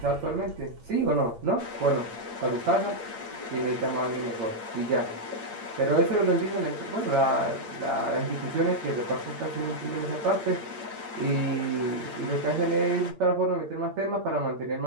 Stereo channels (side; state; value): left; late; 8.7 ms